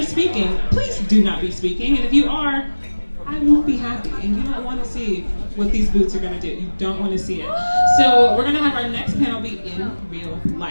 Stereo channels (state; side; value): inverted; both; correlation -1.00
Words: speaking, please do not be speaking. And if you are, I won't be happy. And you don't want to see what these boots are going to do. You don't want to see it. So we're going to have our next panel be in real